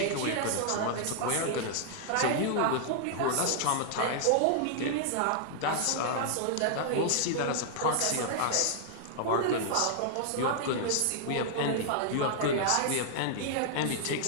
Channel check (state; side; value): different; both; correlation -0.01